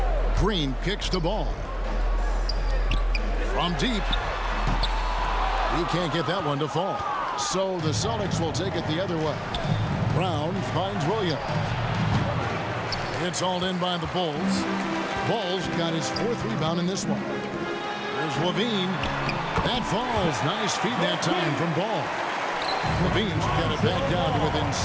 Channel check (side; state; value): both; identical; correlation 1.00